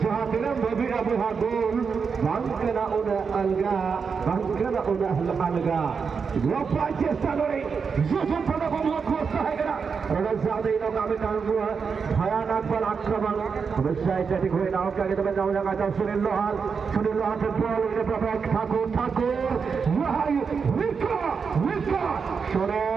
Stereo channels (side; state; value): left; quieter; 5.7 dB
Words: जहां बबीरा बुहा गोल बंकना उन्हें अलगा लोपा चेष्टा करे जोशन पड़ा बमला कोस्ता है करा और ज्यादा ही लोग आगे काम हुआ भयानक बल आक्रमण हमेशा एथलेटिक हुए नाव के आगे तो जाओ लगा सुनील लोहार के बॉल ने प्रभाव ठाकुर वहां विका